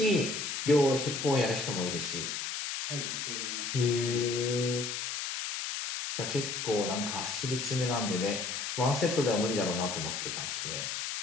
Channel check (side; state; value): left; noise; hiss, 3 dB below the sound